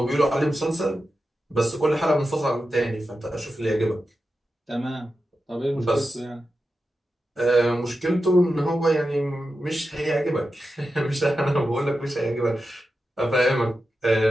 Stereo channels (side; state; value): both; normal; correlation 0.91